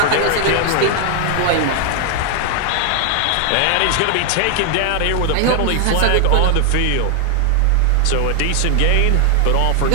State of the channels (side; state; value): both; different; correlation 0.00